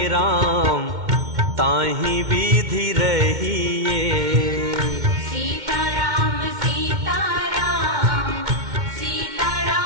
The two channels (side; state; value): left; late; 2.1 ms